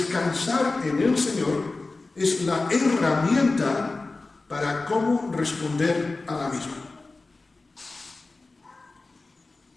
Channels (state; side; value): quieter; right; 3.5 dB